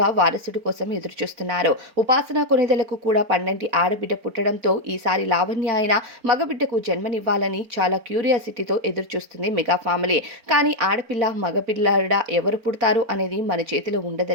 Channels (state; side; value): late; left; 4.4 ms